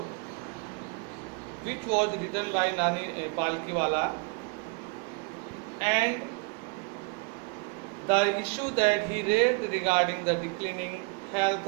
which was written by Nani Palkiwala, and the issue that he raised regarding the declining health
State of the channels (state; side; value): quieter; left; 30.5 dB